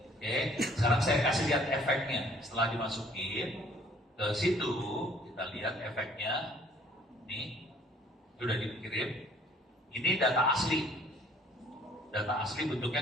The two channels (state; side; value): normal; both; correlation 0.57